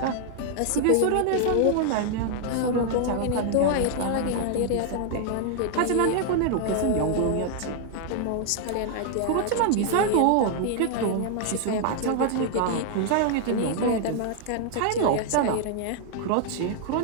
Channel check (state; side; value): different; both; correlation 0.00